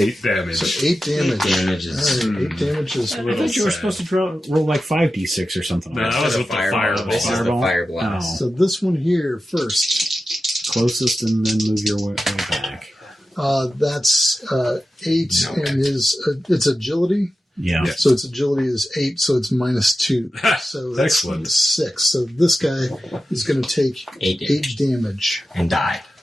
damage. So 8 damage. damage is All right, 8 damage is I thought you were supposed to roll like 5d6 or something. No, like that was with the fireball. This is the Fireball? fire blast. So this one here first. Closest and then move your way back. That's 8, Okay. and it's agility. Yeah. Yeah. So its agility is 8, so it's -2. So that's Excellent. 6. So this guy is going to take 8 damage. 8 damage. And die.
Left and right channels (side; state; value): both; normal; correlation 0.92